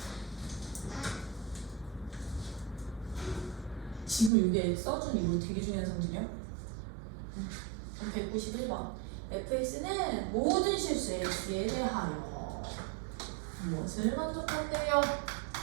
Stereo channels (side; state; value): left; drops out; at 4.3 s